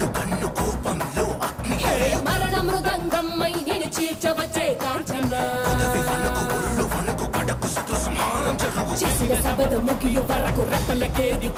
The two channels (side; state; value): both; identical; correlation 1.00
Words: మరణ మృదంగమ్మై నేను చీల్చవచ్చే కాంచన. చేసిన సబద ముగియు వరకు రెప్పలకేది